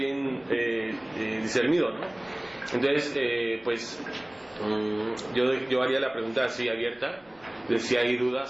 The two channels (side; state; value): left; noise; rumble, 30 dB below the sound